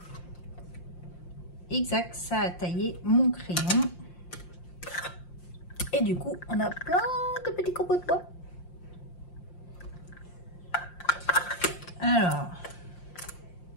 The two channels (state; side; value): late; right; 5.7 ms